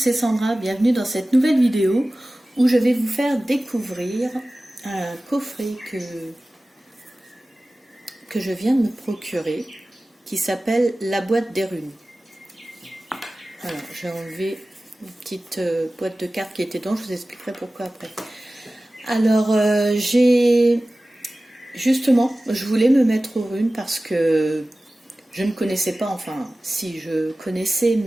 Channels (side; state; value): both; normal; correlation 0.97